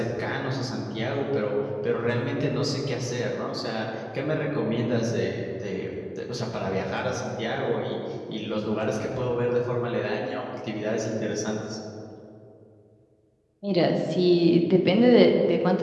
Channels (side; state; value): both; identical; correlation 1.00